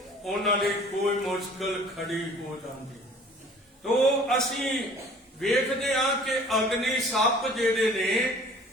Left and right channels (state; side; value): normal; both; correlation 0.50